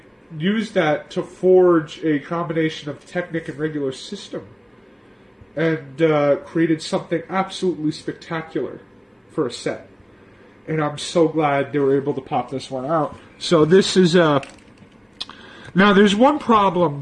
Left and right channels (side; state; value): both; identical; correlation 1.00